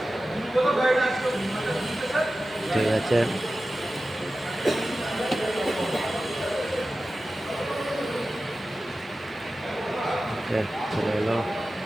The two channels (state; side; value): normal; both; correlation 0.94